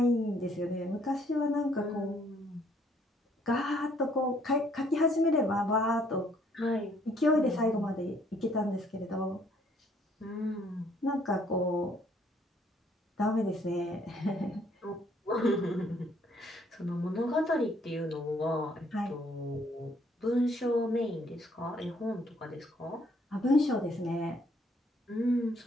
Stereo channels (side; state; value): both; normal; correlation 0.65